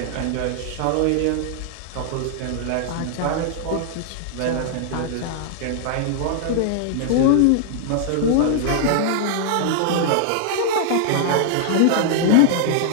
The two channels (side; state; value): both; different; correlation -0.01